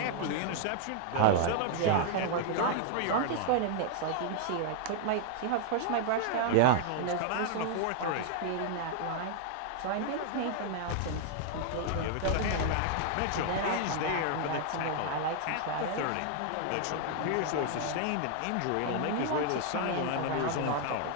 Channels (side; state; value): both; different; correlation 0.00